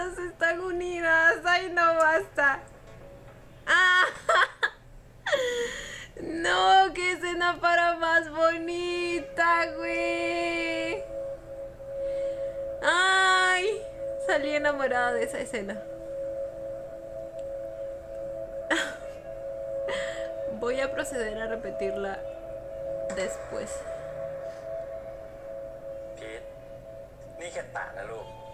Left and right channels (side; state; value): both; identical; correlation 1.00